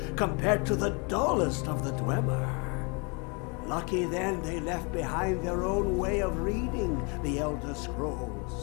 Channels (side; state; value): right; quieter; 32.9 dB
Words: compared to the dullest of the Dwemer. Lucky then they left behind their own way of reading the Elder